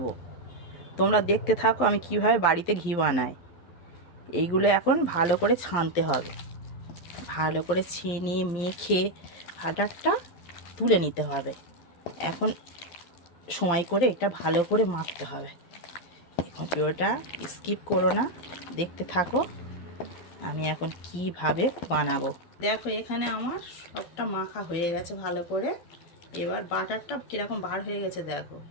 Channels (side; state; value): right; late; 12 ms